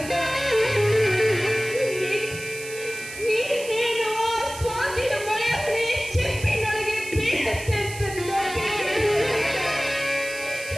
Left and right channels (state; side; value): noise; right; hiss, 12 dB below the sound